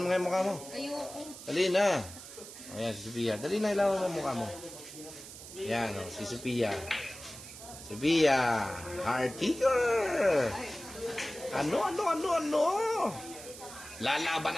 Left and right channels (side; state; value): right; noise; hiss, 14 dB below the sound